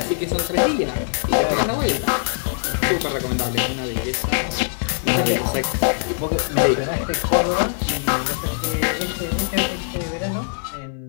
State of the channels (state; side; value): silent; right; 57 dB below the other